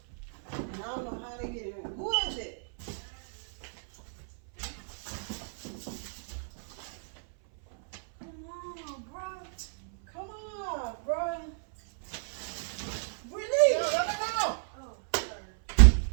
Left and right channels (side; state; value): left; silent; 57 dB below the other